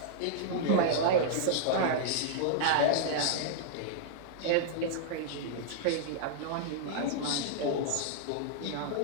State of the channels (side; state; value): both; different; correlation -0.01